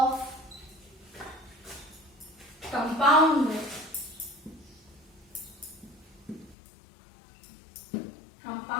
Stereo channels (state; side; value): drops out; right; at 6.6 s